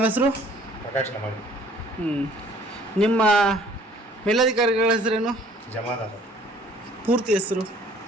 ಹೆಸರು? ಪ್ರಕಾಶ್ ನಮಡಿ. ನಿಮ್ಮ ಮೇಲಧಿಕಾರಿಗಳ ಹೆಸರೇನು? ಜಮಾದಾರ್. ಪೂರ್ತಿ ಹೆಸರು?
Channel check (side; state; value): both; normal; correlation 0.55